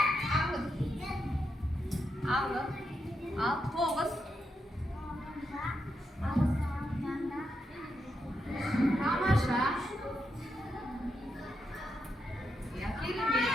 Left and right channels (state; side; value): normal; both; correlation 0.83